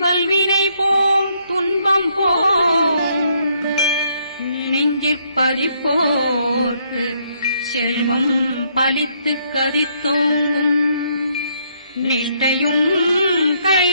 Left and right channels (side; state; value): both; inverted; correlation -0.71